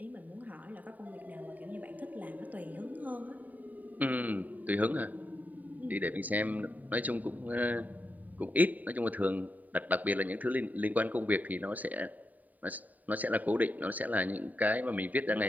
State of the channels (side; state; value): left; late; 0.079 ms